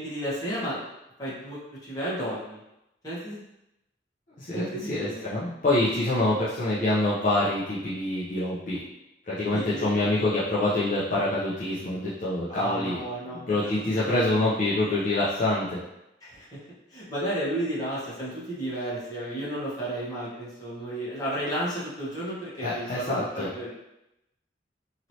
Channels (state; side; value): normal; both; correlation 0.43